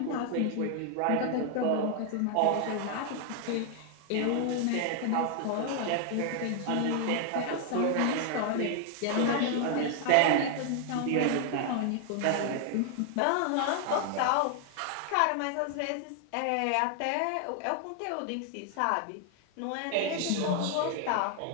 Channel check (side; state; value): both; different; correlation 0.00